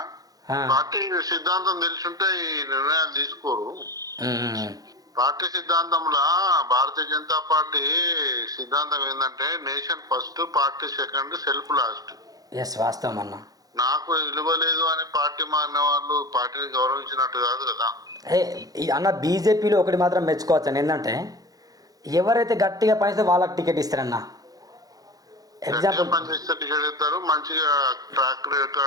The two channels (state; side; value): late; left; 0.18 ms